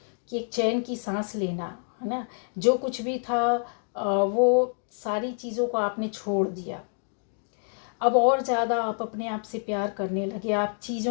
कि एक चैन की सांस लेना है ना, जो कुछ भी था वो सारी चीज़ों को आपने छोड़ दिया। अब और ज़्यादा आप अपने आप से प्यार करने लगे, आप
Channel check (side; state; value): right; silent; 60 dB below the other